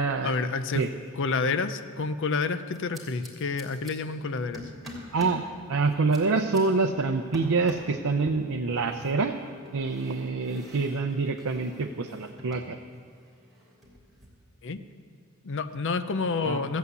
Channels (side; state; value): both; normal; correlation 0.21